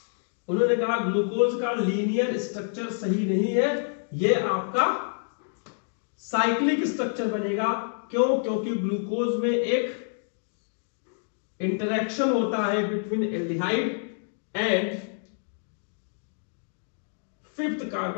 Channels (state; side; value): silent; right; digital silence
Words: उन्होंने कहा ग्लूकोज का लीनियर स्ट्रक्चर सही नहीं है, ये आपका साइक्लिक स्ट्रक्चर बनेगा। क्यों? क्योंकि ग्लूकोज में एक इंटरेक्शन होता है between aldehyde and 5th